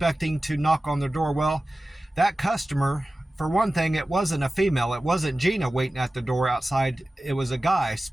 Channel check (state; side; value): normal; both; correlation 0.96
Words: to knock on the door. Well, that customer, for one thing, it wasn't a female. It wasn't Gina waiting at the door outside. It was a guy